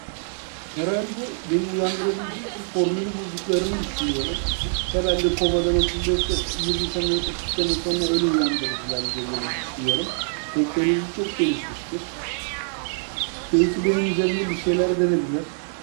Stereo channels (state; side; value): silent; left; 62 dB below the other